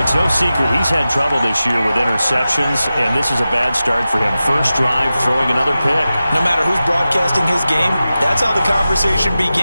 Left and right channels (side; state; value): both; inverted; correlation -0.94